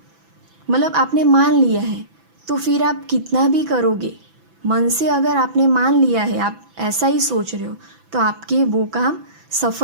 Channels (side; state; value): left; late; 6.0 ms